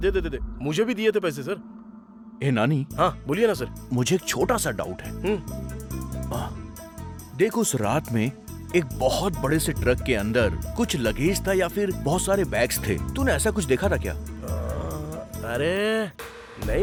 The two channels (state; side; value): identical; both; correlation 1.00